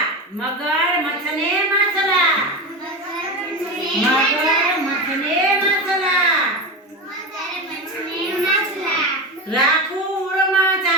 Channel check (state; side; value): normal; both; correlation 0.21